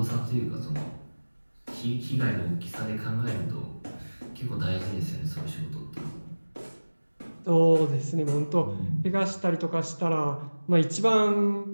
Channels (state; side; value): inverted; both; correlation -1.00